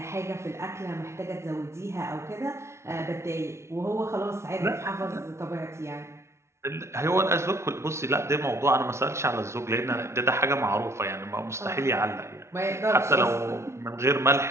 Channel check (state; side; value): late; left; 0.13 ms